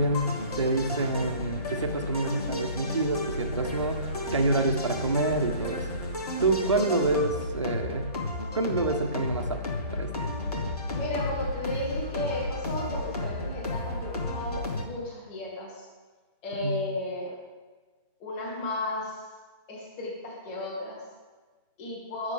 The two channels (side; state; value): both; inverted; correlation -0.45